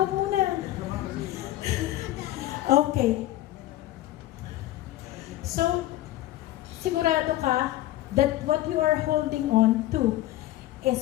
muna. Okay. So, sigurado ka that what you are holding on to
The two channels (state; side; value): quieter; right; 15.2 dB